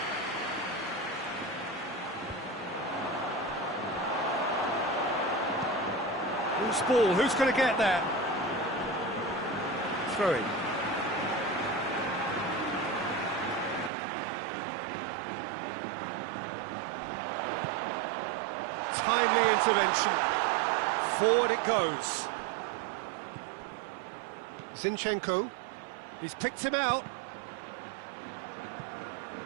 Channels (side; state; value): left; drops out; at 13.9 s